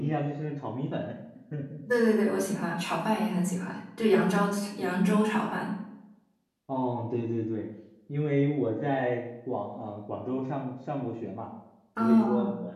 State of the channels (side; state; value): both; identical; correlation 1.00